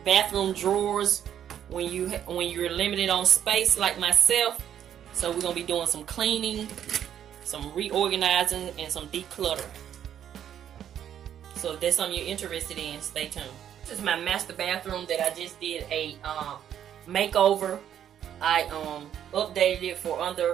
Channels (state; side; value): quieter; left; 9.8 dB